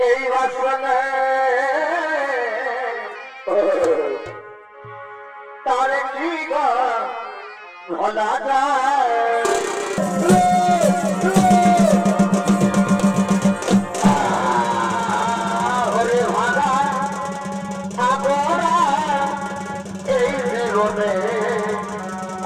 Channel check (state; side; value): identical; both; correlation 1.00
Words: এই বাসনে তার কি ভোলা যায়